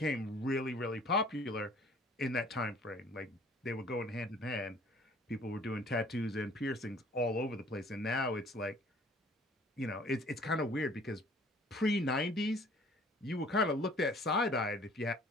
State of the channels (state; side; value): normal; both; correlation 0.54